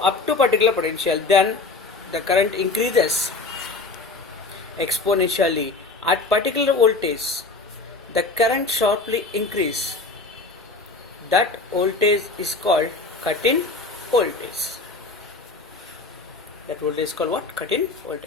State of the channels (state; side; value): quieter; right; 3.6 dB